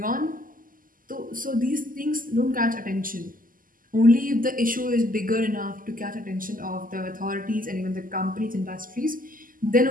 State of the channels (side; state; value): left; late; 0.41 ms